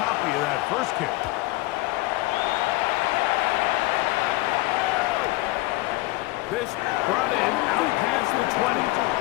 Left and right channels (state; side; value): quieter; right; 20.1 dB